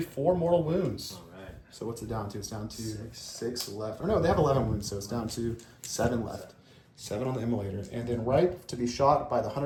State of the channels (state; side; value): identical; both; correlation 1.00